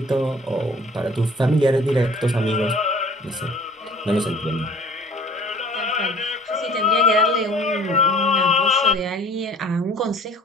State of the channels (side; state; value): both; normal; correlation 0.49